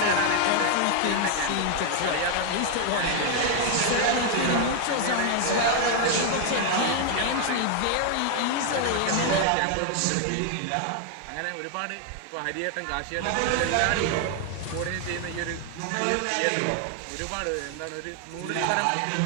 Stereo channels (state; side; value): different; both; correlation 0.00